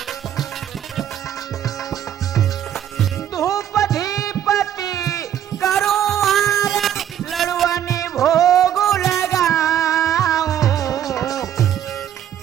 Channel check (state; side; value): quieter; left; 10.4 dB